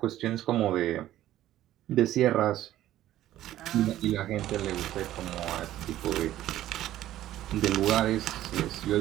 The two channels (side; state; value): left; quieter; 13.6 dB